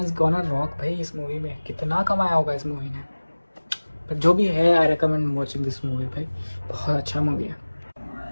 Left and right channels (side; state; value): both; inverted; correlation -1.00